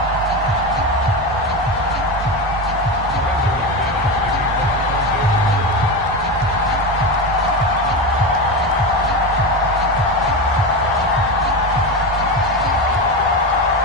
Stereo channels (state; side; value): normal; both; correlation 0.19